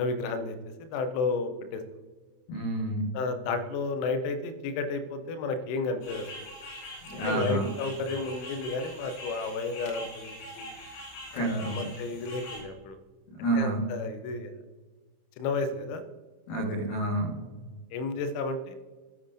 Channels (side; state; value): right; late; 31 ms